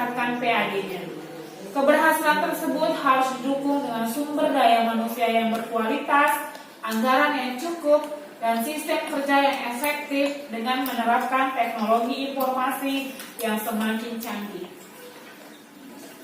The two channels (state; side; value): identical; both; correlation 1.00